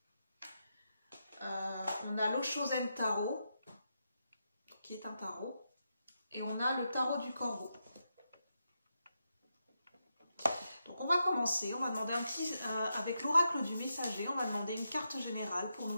on a l'Oshozen Tarot, qui est un tarot, et on a le tarot du corbeau. Donc on va commencer, on va demander un petit, avec l'oracle du messager, on va demander une carte générale pour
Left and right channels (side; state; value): both; inverted; correlation -0.85